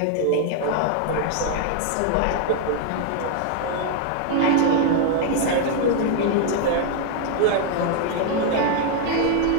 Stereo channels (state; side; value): different; both; correlation 0.00